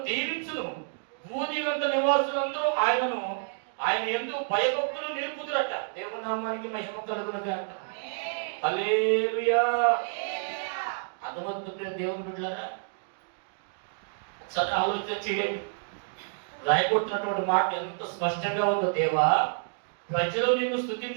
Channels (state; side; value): silent; left; digital silence